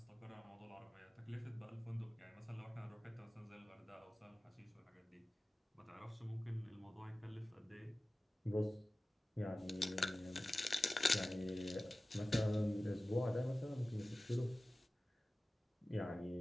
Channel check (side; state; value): both; normal; correlation 0.96